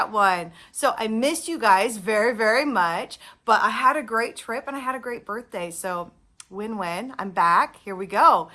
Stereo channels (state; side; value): identical; both; correlation 1.00